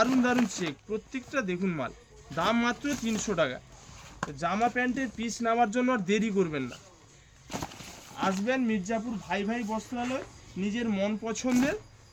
দারুণ চেক, প্রত্যেকটা দেখুন মাল। দাম মাত্র 300 টাকা। জামা প্যান্টের পিস নেওয়ার জন্য আর দেরি করবেন না, আসবেন মির্জাপুর ভাই ভাই বস্ত্রালয়, নিজের মন পছন্দের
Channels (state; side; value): identical; both; correlation 1.00